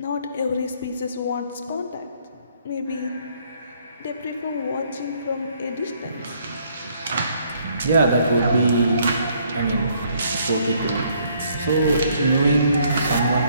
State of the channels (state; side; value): inverted; both; correlation -0.66